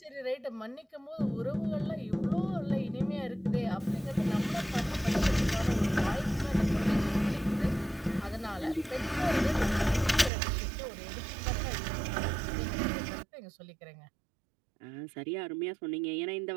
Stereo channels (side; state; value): left; drops out; at 10.3 s